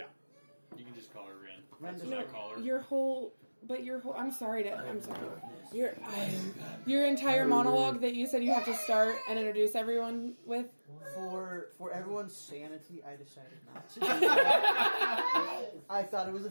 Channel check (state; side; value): inverted; both; correlation -1.00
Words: You can just call her Ren. Ren That's does what I not. call her. I'm sorry. Your entire monologue that you said you have to start and introduce everyone with. For everyone's sanity, I decided not to. I thought it was a